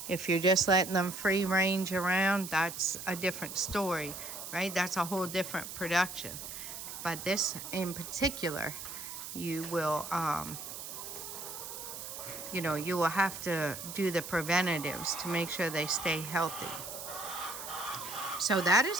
If you're just letting them free range around, that's a different story, right? That's a whole different production. But this in particular, you will, you will have to do the preventatives to make sure they stay healthy. So that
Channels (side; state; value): right; noise; hiss, 9 dB below the sound